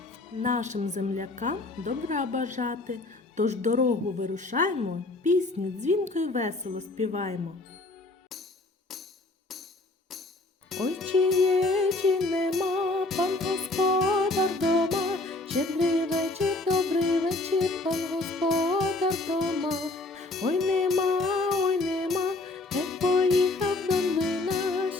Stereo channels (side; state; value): right; quieter; 3.0 dB